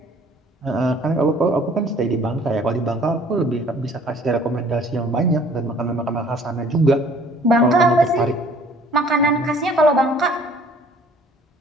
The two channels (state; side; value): normal; both; correlation 0.54